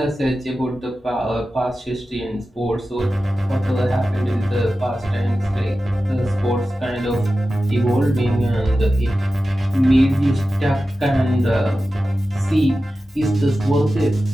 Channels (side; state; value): both; normal; correlation 0.94